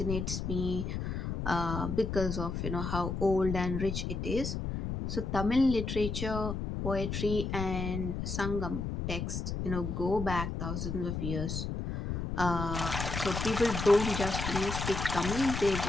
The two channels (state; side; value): noise; left; rumble, 3 dB below the sound